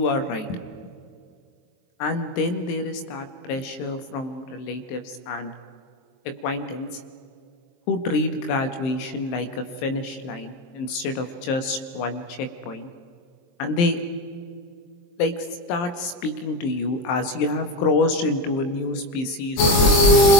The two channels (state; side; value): late; right; 23 ms